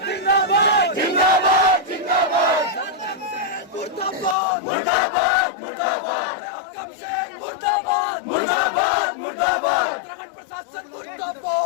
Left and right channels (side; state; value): right; drops out; at 4.4 s